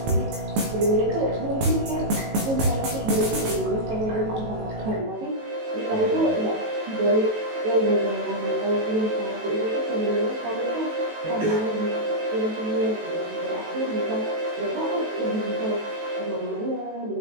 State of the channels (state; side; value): late; left; 18 ms